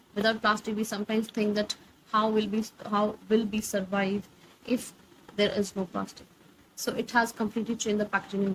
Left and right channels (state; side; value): identical; both; correlation 1.00